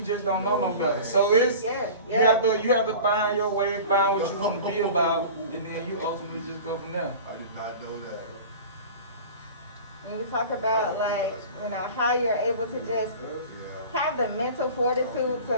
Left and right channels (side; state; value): both; inverted; correlation -0.38